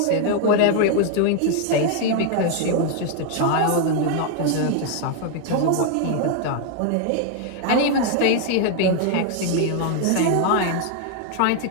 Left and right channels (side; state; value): both; different; correlation 0.00